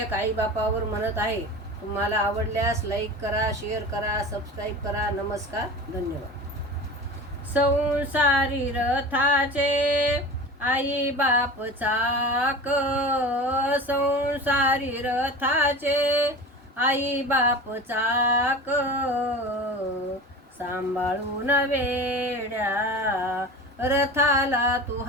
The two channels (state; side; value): normal; both; correlation 0.33